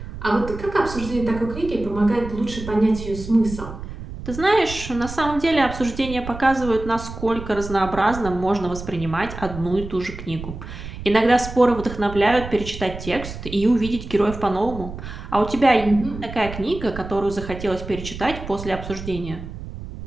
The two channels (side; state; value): right; noise; rumble, 11 dB below the sound